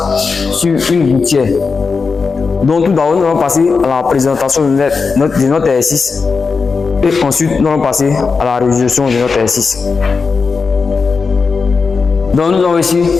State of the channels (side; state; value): right; quieter; 4.8 dB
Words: sur une gouttière. Donc tout d'abord nous allons passer à la présentation de notre exercice et ensuite nous allons passer à la résolution de notre exercice. Donc nous avons ici